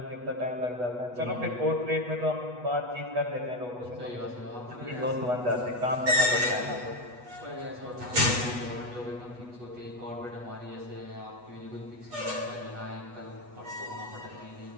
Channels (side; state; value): left; late; 8.2 ms